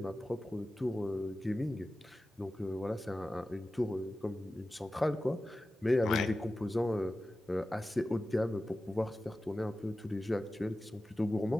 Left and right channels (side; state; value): both; normal; correlation 0.95